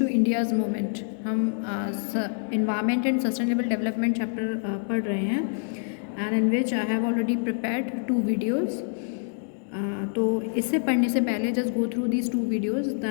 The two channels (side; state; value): right; silent; digital silence